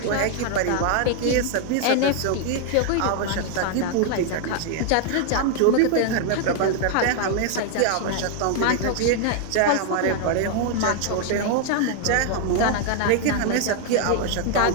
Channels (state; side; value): different; both; correlation 0.00